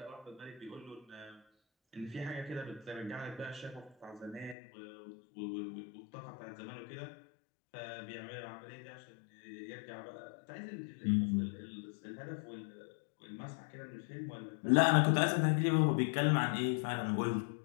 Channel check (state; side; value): drops out; right; at 4.5 s